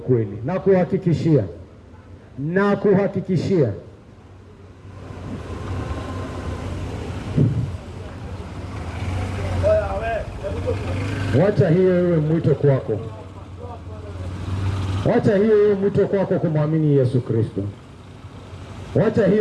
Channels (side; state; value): both; identical; correlation 1.00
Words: Na kuhakikishia wacha hiyo iwe mwito kwako. Wacha hiyo iwe mwito kwako kumwamini Yesu Kristo. Wacha